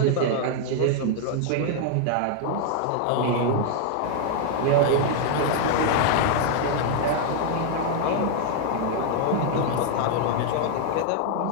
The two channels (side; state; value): both; different; correlation 0.00